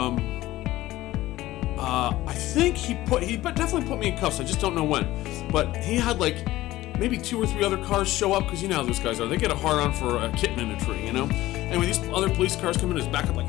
I think he definitely put me in cuffs. I just don't know when. But he had like maybe 2 or 3 other cars show up, because you know how those guys are. They get a hard on for a kitten in a tree, you know? Anyway, these other police cars come in, his back up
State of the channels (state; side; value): quieter; right; 16.5 dB